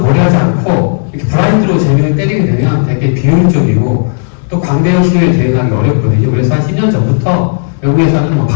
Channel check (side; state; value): right; silent; digital silence